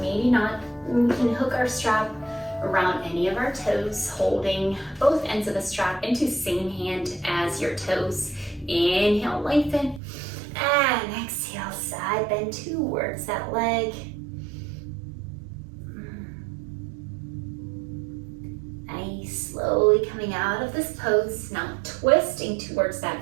not. We can hook our strap around any of our toes, holding both ends of the strap into the same hand as your toes. Inhale, lengthen, and exhale, side bend towards that leg. Nice, slowly coming out of this pose, now twisting towards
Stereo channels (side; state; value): left; drops out; at 10.0 s